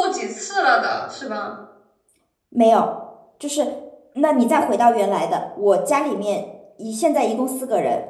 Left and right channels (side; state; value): both; identical; correlation 1.00